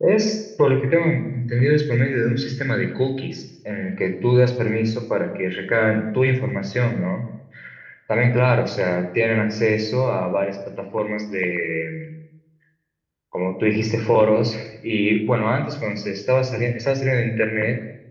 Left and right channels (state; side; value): identical; both; correlation 1.00